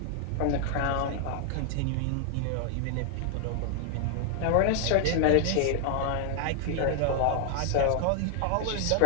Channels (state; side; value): different; both; correlation 0.00